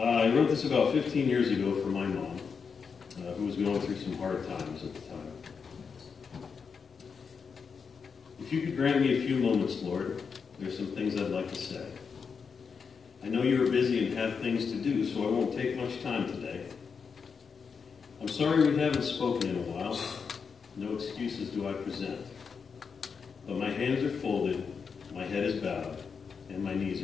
wrote this about 15 years ago for my mom, who was going through some hard times at the time. If you could grant me a few moments, Lord, there's some things I'd like to say. I know you are busy and have things to do, so I won't take much time today. I'm sorry we haven't spoken in a while. No excuses do I present. But my hands are folded, my head is bowed, and my knees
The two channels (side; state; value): right; quieter; 5.8 dB